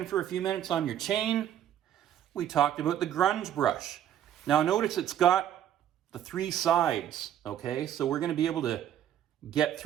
for a few minutes on your chain, we talked about the grunge brush. Now notice it's got the 3 sides, okay? So we're going to be able to get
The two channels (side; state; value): left; quieter; 10.7 dB